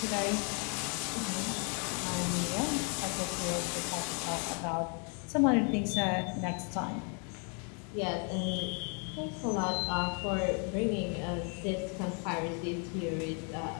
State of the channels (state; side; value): quieter; right; 39.0 dB